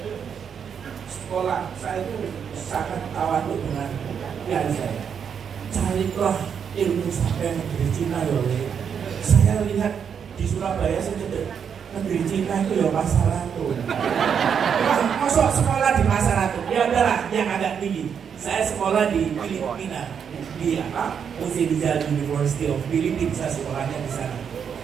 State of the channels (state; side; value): quieter; left; 7.4 dB